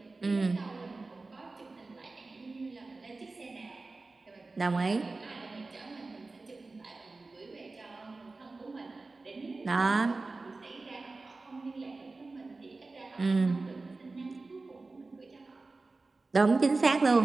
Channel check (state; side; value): quieter; left; 3.5 dB